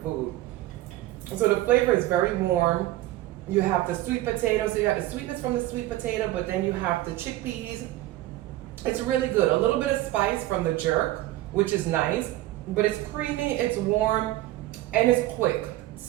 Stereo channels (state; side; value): quieter; left; 16.0 dB